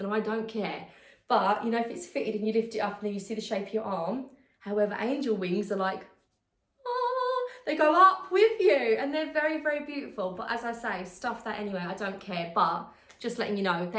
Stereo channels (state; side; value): identical; both; correlation 1.00